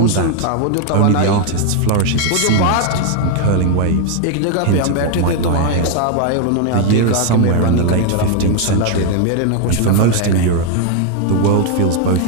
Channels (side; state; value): both; different; correlation 0.01